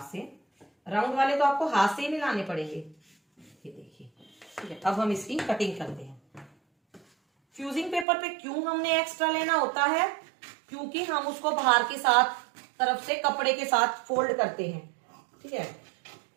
से, राउंड वाले तो आपको हाथ से ही मिलाने पड़ेंगे। ये देखिए, ठीक है। अब हम इसकी कटिंग करते हैं। फ्यूजिंग पेपर पे क्यों हमने एक्स्ट्रा लेना होता है, क्योंकि हम उसको बाहर के साथ तरफ से कपड़े के साथ फोल्ड करते हैं, ठीक है।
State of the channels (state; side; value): drops out; left; at 8.1 s